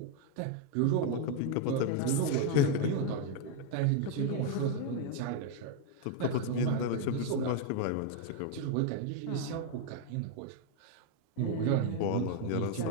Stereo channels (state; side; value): different; both; correlation 0.01